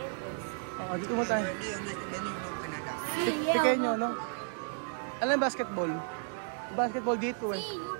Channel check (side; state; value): left; silent; 56 dB below the other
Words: dito mo tayo. Tikay nyo, no? Alam basketball? Basketball dito eh.